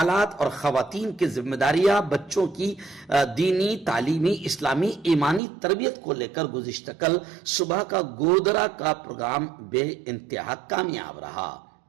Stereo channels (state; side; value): drops out; left; at 5.4 s